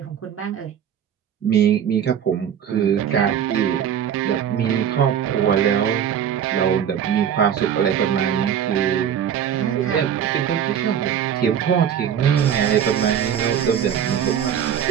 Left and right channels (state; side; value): quieter; left; 8.9 dB